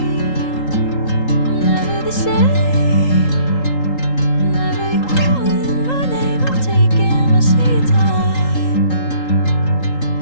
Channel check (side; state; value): right; late; 3.8 ms